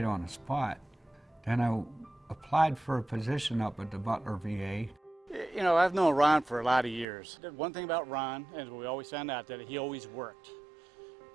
on the spot. Then I applied for a position up at the Butler VA. You know, I've known Ron for a lot of years. One thing about Ron, and we always found out, that he always worked.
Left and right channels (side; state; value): left; drops out; at 7.1 s